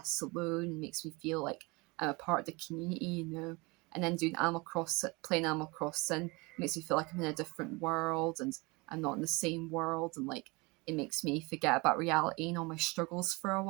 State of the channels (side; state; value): left; quieter; 25.9 dB